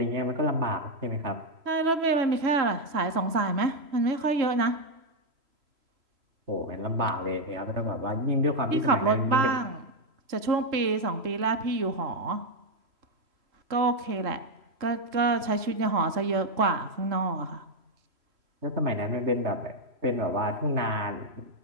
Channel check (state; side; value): late; left; 3.0 ms